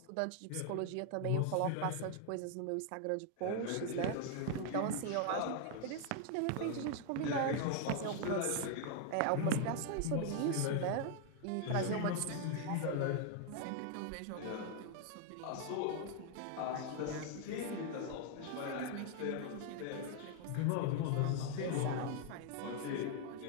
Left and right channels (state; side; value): different; both; correlation 0.00